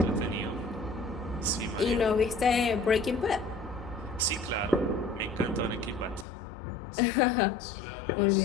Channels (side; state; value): right; drops out; at 6.2 s